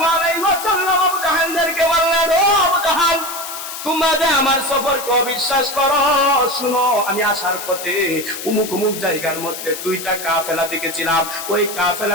আলাইহি ওয়াসাল্লাম আবু জাহেলকে বললেন, ও আবু জাহেল, তোমরা যে আমার সফরকে অবিশ্বাস করো, শুনো, আমি আসার পথে উমুক উমুক জায়গার মধ্যে দুইটা কাফেলা দেখেছিলাম। ওই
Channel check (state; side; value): noise; left; hiss, 9 dB below the sound